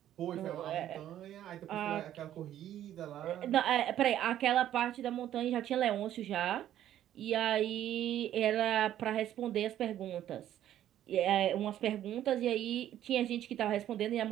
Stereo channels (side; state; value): left; quieter; 11.8 dB